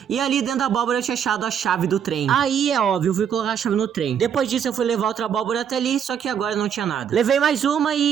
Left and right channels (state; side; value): quieter; left; 8.2 dB